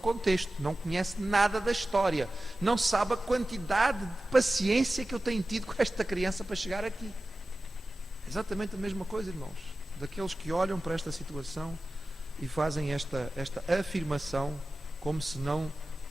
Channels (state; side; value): normal; both; correlation 0.95